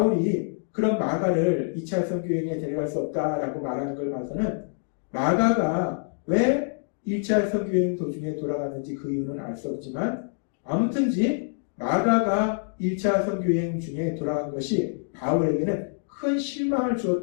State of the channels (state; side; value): silent; right; digital silence